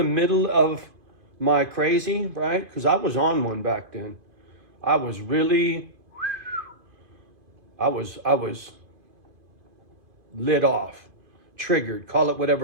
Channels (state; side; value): late; left; 2.5 ms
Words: middle of my crazy, right? Because I was on one back then. I was lit off, triggered, call it